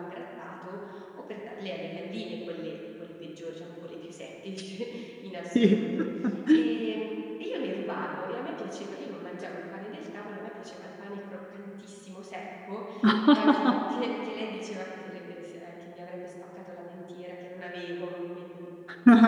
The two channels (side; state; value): both; identical; correlation 1.00